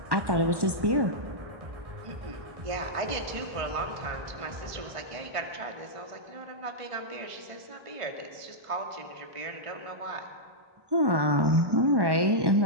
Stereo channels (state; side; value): late; left; 1.1 ms